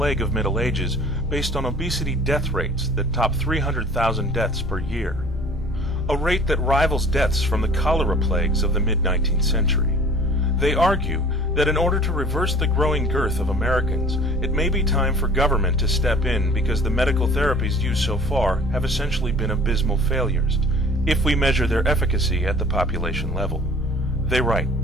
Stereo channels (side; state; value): both; normal; correlation 0.48